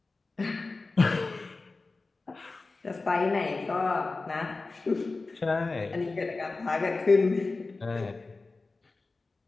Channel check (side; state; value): right; quieter; 3.6 dB